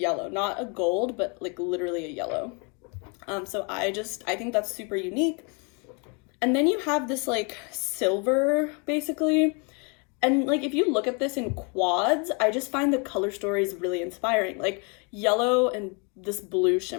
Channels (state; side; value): quieter; right; 34.2 dB